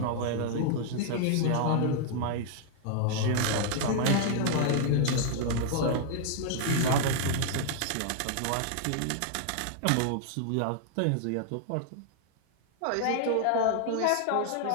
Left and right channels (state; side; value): different; both; correlation 0.00